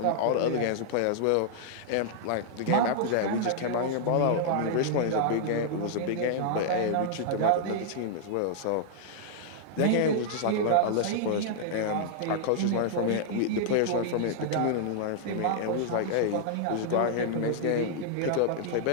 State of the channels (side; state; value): both; different; correlation -0.01